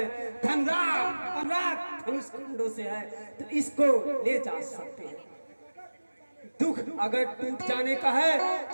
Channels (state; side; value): inverted; both; correlation -1.00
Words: धनराज धनुष कुंडों से है तो इसको ले जा सकते हैं। दुख अगर टूट जाने का है